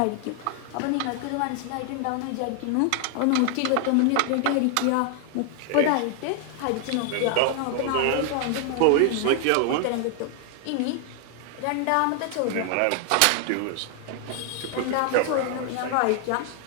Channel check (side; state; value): both; different; correlation 0.00